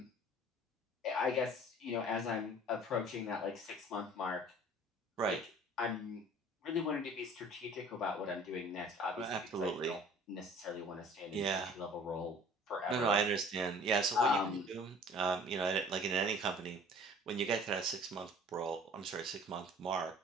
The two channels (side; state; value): both; normal; correlation 0.49